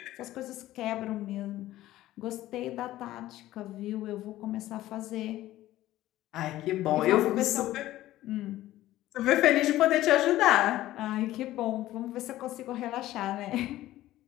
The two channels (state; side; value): quieter; right; 15.1 dB